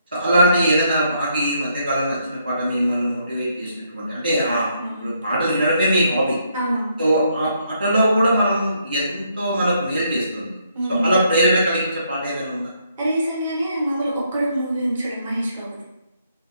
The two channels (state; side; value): inverted; both; correlation -0.73